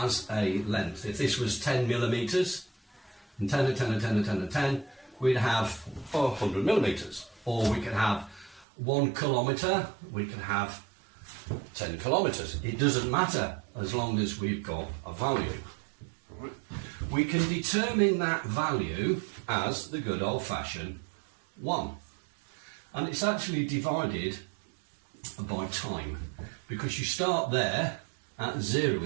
a length, if this was 10 millimetres, and 10 and 10 and 10 and 10 and 10, we'd have 100 millimetres. Or we could have 1 kilometre, we could have 10 kilometres. It doesn't matter as long as we've got a value. We can determine that value as the good old-fashioned 1. And it's actually divided by time, because you start there at 0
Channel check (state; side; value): drops out; left; at 8.7 s